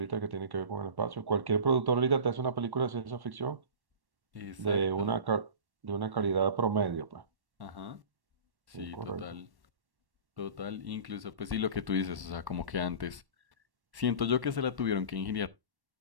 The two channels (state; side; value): late; left; 1.1 ms